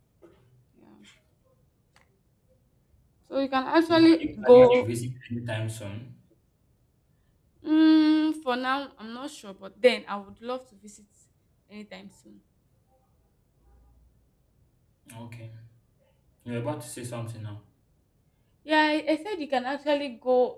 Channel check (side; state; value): both; identical; correlation 1.00